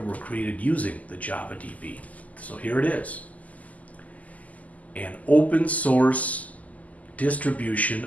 were created using the Java DB. So here it is. An open source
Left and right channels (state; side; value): late; right; 0.075 ms